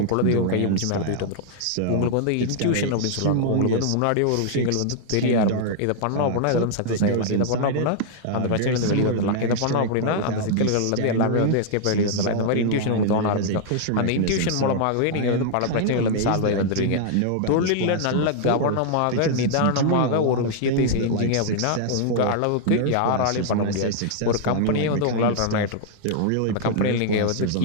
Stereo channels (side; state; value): both; different; correlation -0.01